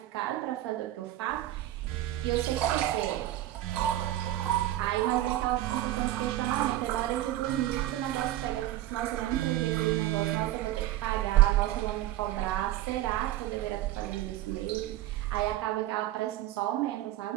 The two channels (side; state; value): left; quieter; 14.4 dB